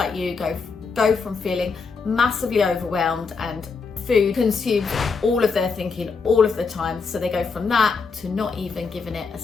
you go from feeling massively overwhelmed and food consumes all of their thinking all of the time, so they go from that to not even giving it a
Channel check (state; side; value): quieter; right; 4.9 dB